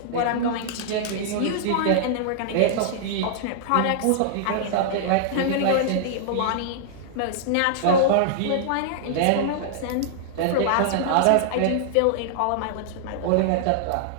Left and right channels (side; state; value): both; different; correlation -0.01